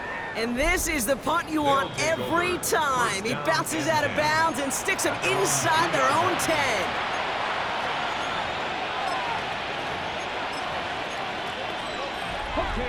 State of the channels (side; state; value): both; identical; correlation 1.00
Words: And this is the punt you want every time. He bounces out of bounds and sticks them inside their own 10.